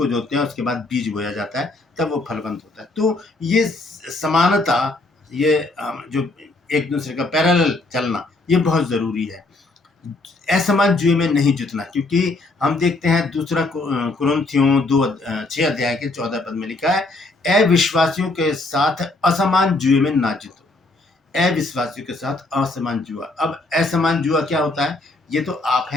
जोतते हैं, उसके बाद बीज बोया जाता है, तब वो फलवंत होता है। तो ये समानता, ये जो एक दूसरे का पैरेलल चलना, ये बहुत जरूरी है। असमान जुए में नहीं जुतना, क्योंकि हम देखते हैं दूसरा कुरिन्थियों 6 अध्याय के 14 पद में लिखा है अविश्वासियों के साथ असमान जुए में ना जीतो। अविश्वासियों के साथ असमान जुआ। अब असमान जुआ क्या होता है? ये तो आप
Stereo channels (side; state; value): right; quieter; 3.0 dB